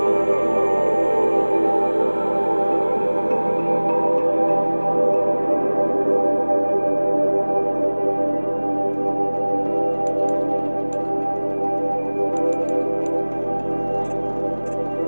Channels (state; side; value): inverted; both; correlation -1.00